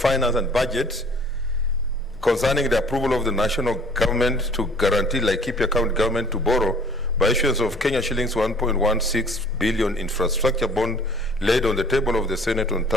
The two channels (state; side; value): normal; both; correlation 0.52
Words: and Budget concerning the approval of the national government to guarantee Laikipia County government to borrow by issuance of Kenya shillings 1.16 billion infrastructure bond laid on the table of the Senate on